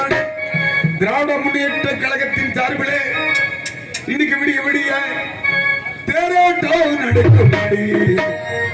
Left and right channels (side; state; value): both; identical; correlation 1.00